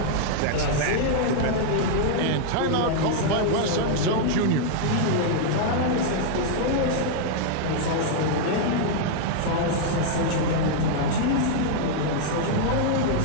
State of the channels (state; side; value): different; both; correlation -0.01